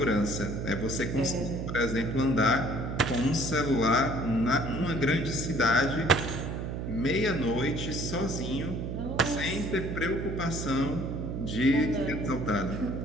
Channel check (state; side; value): noise; right; hum, 4 dB below the sound